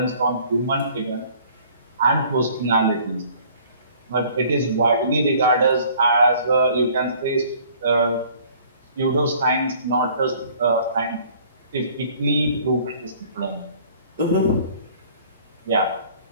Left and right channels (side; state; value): both; inverted; correlation -0.54